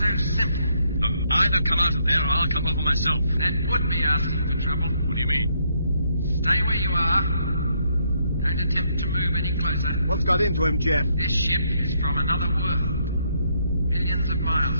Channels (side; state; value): both; inverted; correlation -0.73